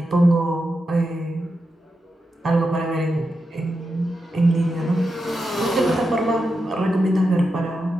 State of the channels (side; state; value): both; normal; correlation 0.88